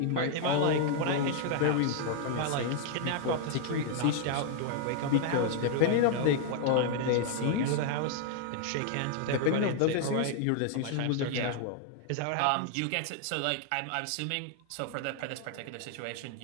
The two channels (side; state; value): both; different; correlation 0.00